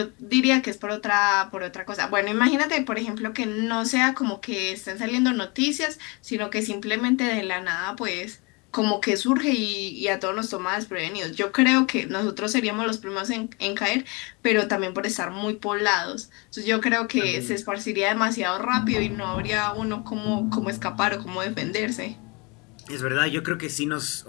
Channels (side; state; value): right; quieter; 29.0 dB